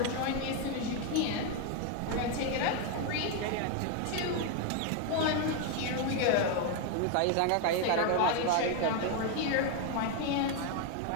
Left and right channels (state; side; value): different; both; correlation 0.01